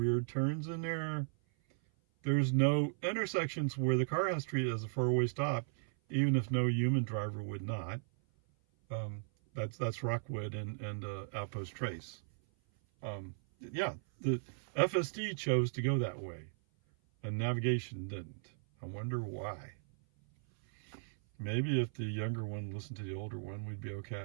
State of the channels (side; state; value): left; silent; 54 dB below the other